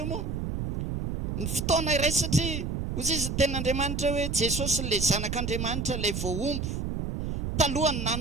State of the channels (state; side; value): noise; right; rumble, 3 dB below the sound